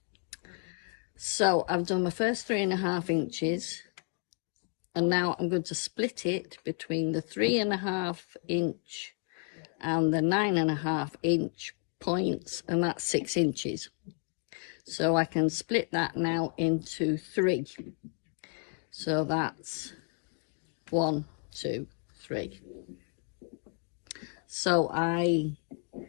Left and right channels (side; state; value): right; quieter; 38.6 dB